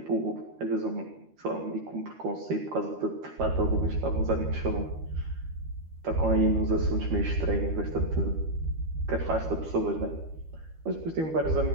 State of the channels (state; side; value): late; left; 13 ms